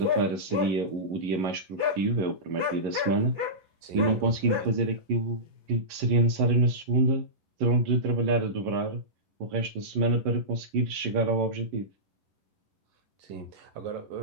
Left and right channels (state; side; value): late; left; 11 ms